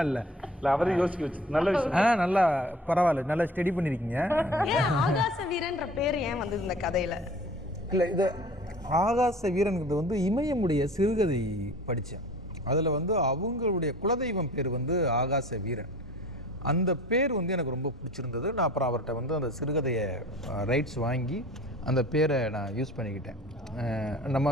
இல்ல அவரையும் யோசிக்க வச்சு நல்ல விஷயம். நல்லா பரவாயில்ல நல்லா ஸ்டடி பண்ணிருக்கீங்க. ஆகாச வீரன்ற பேர் ஏன் வந்தது இந்த கதையில? இல்ல இது ஆகாச வீரன்கிறது வந்து இமயமுடைய சிறுகதை படித்தேன். அதில் வந்து அவங்களுடைய குலதெய்வம் பேர் வந்து ஆகாச வீரன். அந்த பேர் வந்து எனக்கு ரொம்ப பிடிச்சிருந்தது. நான் அப்புறம் அவர்கிட்ட வந்து அந்த சிறுகதையை ரைட்ஸ் வாங்கி அந்த பேரை நான் யூஸ் பண்ணிக்கிட்டேன். நம்ம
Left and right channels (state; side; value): normal; both; correlation 0.45